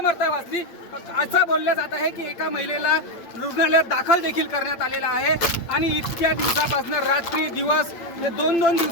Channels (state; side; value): late; right; 8.8 ms